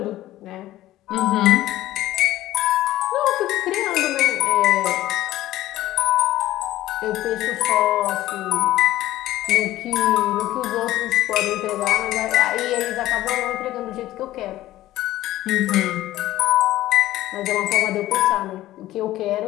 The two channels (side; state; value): right; quieter; 15.1 dB